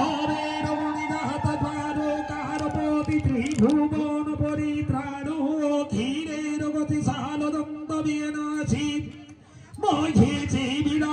রমণী দাহত দ্বারকার পতি ত্রিভুবন পরিত্রাণ ধীরের গতি সালদন্ত বিনাশী মহেছে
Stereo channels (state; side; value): identical; both; correlation 1.00